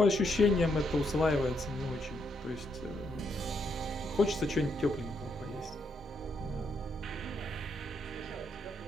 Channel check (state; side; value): normal; both; correlation 0.77